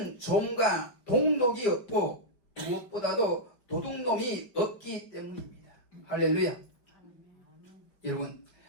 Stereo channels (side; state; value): right; late; 5.1 ms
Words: 좀과 동록이 없고 무엇보다도 도둑놈이 없기 때문입니다. 할렐루야. 여러분,